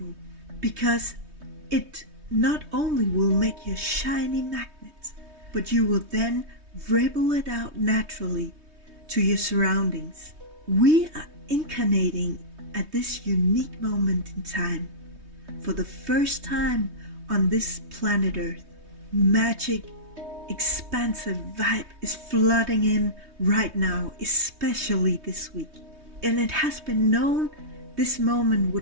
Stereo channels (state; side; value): late; left; 3.2 ms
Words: because it not only will make you a shiny magnet, but you will then ripple it out naturally to your surroundings. We are incarnating at this unique moment in time. For the first time on this planet Earth, magic, expansive vibe is flooding in right now, especially this week. And it has been known this moment